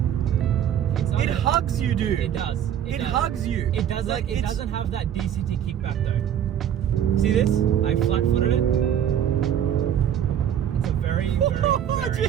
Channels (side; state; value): left; quieter; 9.7 dB